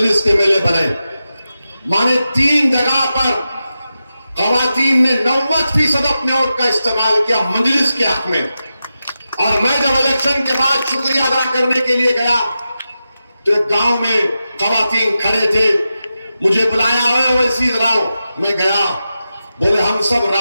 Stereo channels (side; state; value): both; inverted; correlation -0.91